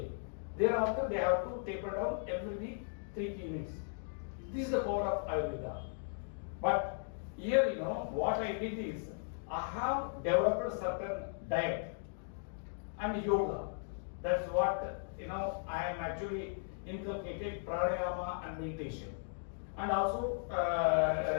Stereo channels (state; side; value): silent; right; digital silence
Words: Thereafter, they have to taper down every week 3 key minutes. This is the power of Ayurveda. But here, what I did is, I have developed a certain diet and yoga. That's what, I am actually inculcated pranayama and meditation. And also